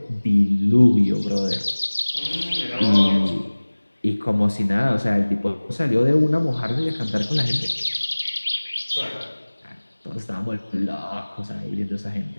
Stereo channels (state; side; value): inverted; both; correlation -1.00